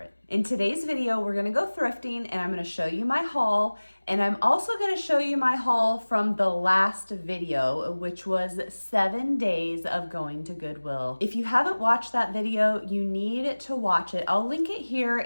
In today's video, we're gonna go thrifting and I'm gonna show you my haul, and I'm also gonna show you my haul from the last video, which was 7 days of going to Goodwill. If you haven't watched that video, you need to watch it. I'll link it here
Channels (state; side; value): inverted; both; correlation -1.00